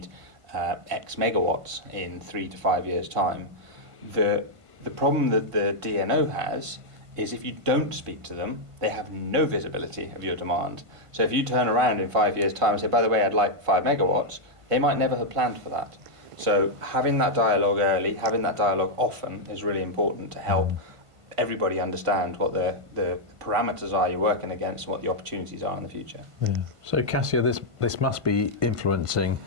X megawatts in 3 to 5 years' time? The The problem that the DNO has is if you don't speak to them, they have no visibility of your demand. So if you turn around in 5 years' time and say, by the way, I'd like 5 megawatts, they might never have planned for that. So having that dialogue early, having that dialogue often is really important to help everybody understand what the parameters are you're working against and what the opportunities are in the future. Yeah. So Cassia, this must be influencing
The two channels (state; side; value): late; left; 1.5 ms